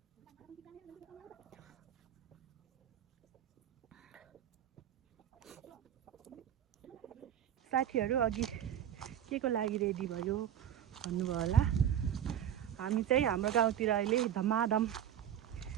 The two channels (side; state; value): left; quieter; 10.0 dB